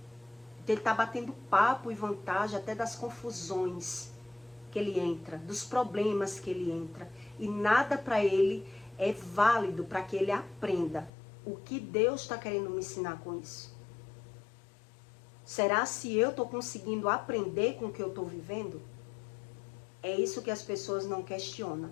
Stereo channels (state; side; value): drops out; right; at 11.1 s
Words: Ele está batendo papo e vantagem até das confusões que ele entra, dos problemas que ele entra. E nada para ele é válido para que ele aprenda o que Deus está querendo me ensinar com isso. Será se eu estou conseguindo aprender com o que eu estou vivendo? É isso que as pessoas não questionam.